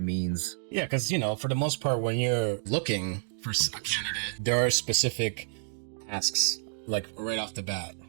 means. Yeah, because for the most part, when you're looking for a candidate, there are specific tasks, like right off the bat,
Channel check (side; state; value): left; silent; digital silence